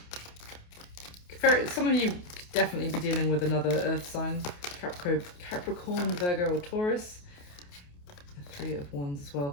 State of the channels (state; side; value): late; right; 28 ms